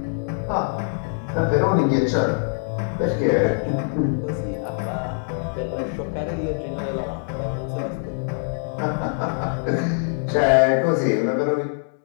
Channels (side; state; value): right; silent; 63 dB below the other